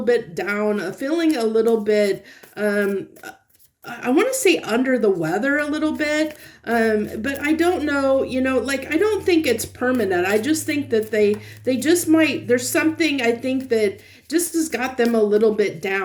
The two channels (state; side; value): identical; both; correlation 1.00